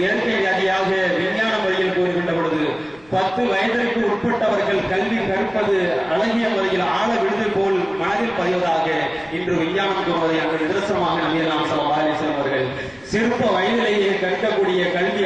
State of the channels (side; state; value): left; noise; rumble, 29 dB below the sound